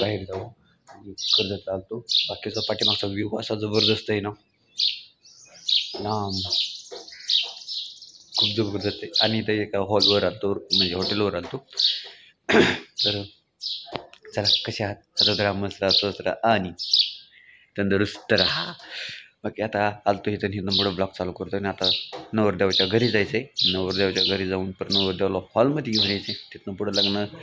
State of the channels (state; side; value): identical; both; correlation 1.00